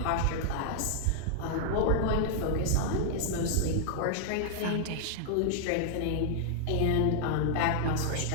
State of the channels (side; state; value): both; different; correlation -0.01